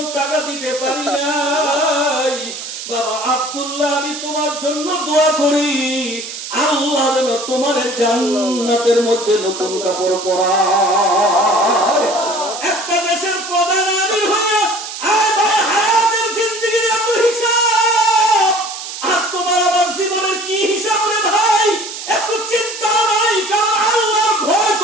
টাকা দিতে পারি নাই। বাবা আব্দুল্লাহ, আমি তোমার জন্য দোয়া করি, আল্লাহ যেন তোমার জান্নাতের মধ্যে নতুন কাপড় পরায়। একটা দেশের প্রধান আমির হয়ে হায়াতের জিন্দেগির এত হিসাব, আর তোমার আমার জীবনের কি হিসাব রে ভাই? এত চিন্তা নাই, কারণ আল্লাহর ভয়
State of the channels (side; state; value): right; noise; hiss, 9 dB below the sound